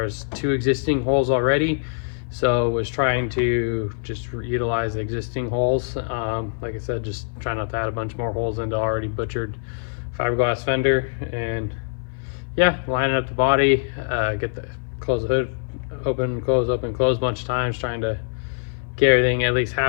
2 existing holes already, so was trying to just utilize the existing holes. Like I said, just try not to add a bunch more holes into already butchered fiberglass fender. And yeah, lining up the body, close the hood, open, close a bunch of times, trying to get everything at least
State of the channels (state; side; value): silent; right; 56 dB below the other